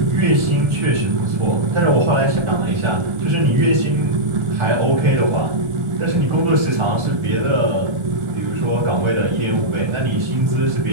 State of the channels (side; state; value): left; late; 1.4 ms